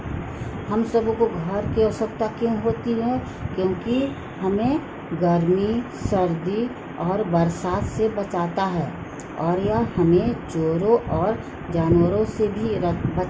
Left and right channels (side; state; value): both; identical; correlation 1.00